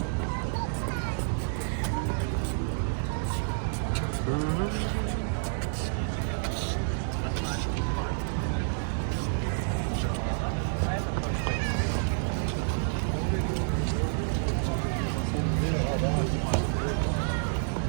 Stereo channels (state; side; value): silent; left; digital silence